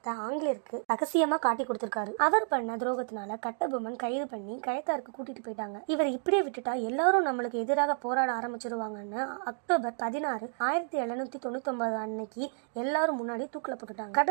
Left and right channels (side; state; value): left; silent; 57 dB below the other